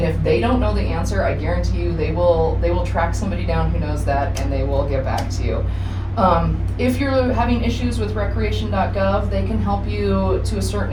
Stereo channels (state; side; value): identical; both; correlation 1.00